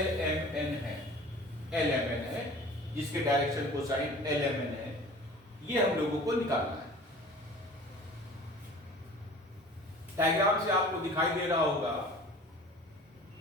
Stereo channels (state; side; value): normal; both; correlation 0.44